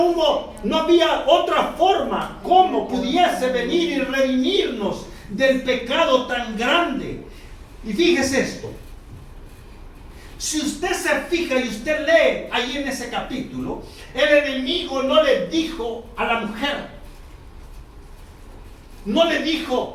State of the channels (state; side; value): identical; both; correlation 1.00